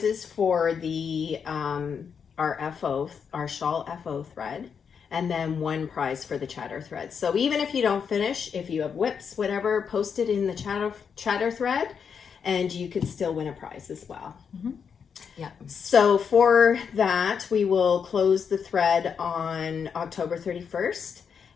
for the our shawl FO thread, and then one prize for the chatter thread. So even if you don't finish, if you have whips, whatever, post it in the chatter thread, and you could still win a prize as well. Mm-hmm. Yeah. So for that, we will close the thread on October 31st,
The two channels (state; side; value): quieter; right; 6.7 dB